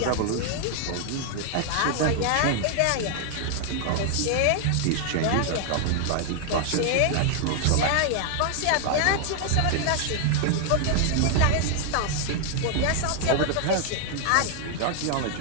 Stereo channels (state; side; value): different; both; correlation 0.00